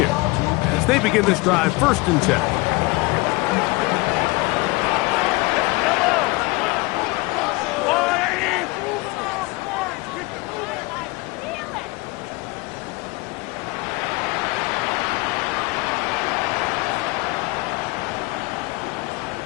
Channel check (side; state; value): right; quieter; 23.9 dB